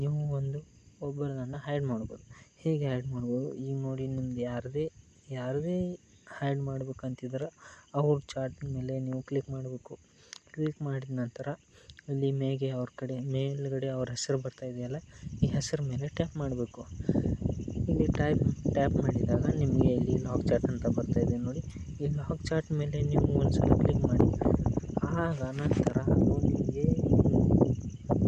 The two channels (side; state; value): both; identical; correlation 1.00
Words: ನೀವು ಒಬ್ಬರನ್ನು ಹೈಡ್ ಮಾಡ್ಬೋದು. ಹೇಗೆ ಹೈಡ್ ಮಾಡ್ಬೋದು? ಈಗ ನೋಡಿ, ನಿಮ್ದು ಯಾರದೇ ಹೈಡ್ ಮಾಡ್ಬೇಕಂತಿದ್ರೆ ಅವ್ರ ಚಾಟ್ ಮೇಲೆ ನೀವು ಕ್ಲಿಕ್ ಮಾಡಬೇಕು. ಕ್ಲಿಕ್ ಮಾಡಿದ ನಂತರ ಇಲ್ಲಿ ಮೇಲ್ಗಡೆ ಅವ್ರ ಹೆಸರು ಬರ್ತಾ ಇದೆಯಲ್ಲ, ಈ ಹೆಸರು ಮೇಲೆ ಟ್ಯಾಪ್ ಮಾಡಬೇಕು. ಇಲ್ಲಿ ಟ್ಯಾಪ್ ಮಾಡಿದಾಗ ನಿಮಗೆ ಇಲ್ಲಿ ಲಾಕ್ ಚಾಟ್ ಅಂತ ಬರ್ತಾ ಇದೆ ನೋಡಿ. ಈ ಲಾಕ್ ಚಾಟ್ ಮೇಲೆ ನೀವು ಒಂದ್ಸಲ ಕ್ಲಿಕ್ ಮಾಡಿ. ಆಗ ನಂತರ ಅದು ನಿಮಗೆ